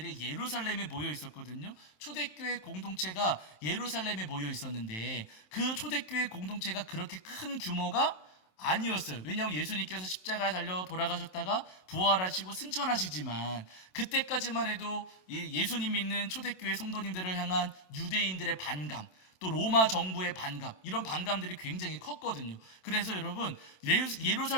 예루살렘에 모여 있었거든요. 초대교회 공동체가 예루살렘에 모여 있었는데 그 초대교회 공동체가 그렇게 큰 규모가 아니었어요. 왜냐하면 예수님께서 십자가에 달려 돌아가셨다가 부활하시고 승천하시지만 그때까지만 해도 예수님 믿는 초대교회 성도님들을 향한 유대인들의 반감, 또 로마 정부의 반감, 이런 반감들이 굉장히 컸거든요. 그래서 여러분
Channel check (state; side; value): late; right; 27 ms